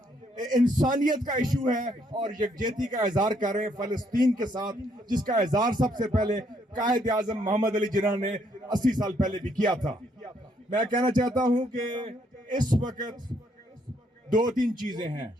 انسانیت کا ایشو ہے اور یکجہتی کا اظہار کر رہے ہیں فلسطین کے ساتھ، جس کا اظہار سب سے پہلے قائد اعظم محمد علی جناح نے 80 سال پہلے بھی کیا تھا. میں کہنا چاہتا ہوں کہ اس وقت دو تین چیزیں ہیں.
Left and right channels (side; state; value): both; normal; correlation 0.71